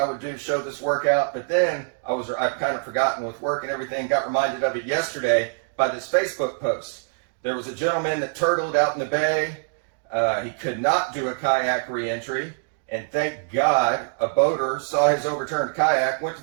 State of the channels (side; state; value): left; silent; digital silence